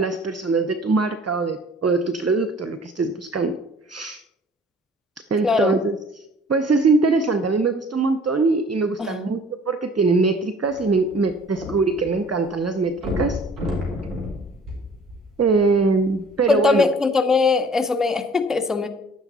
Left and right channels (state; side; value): normal; both; correlation 0.51